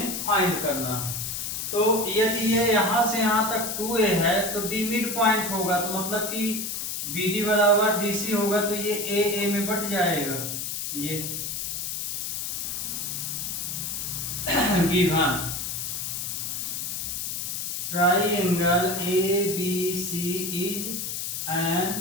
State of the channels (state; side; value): noise; left; hiss, 3 dB below the sound